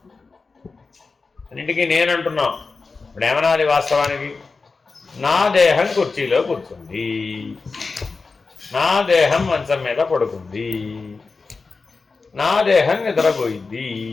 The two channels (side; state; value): right; quieter; 4.3 dB